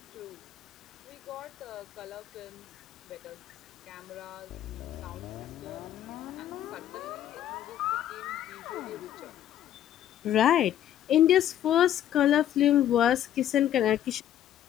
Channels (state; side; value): quieter; right; 11.3 dB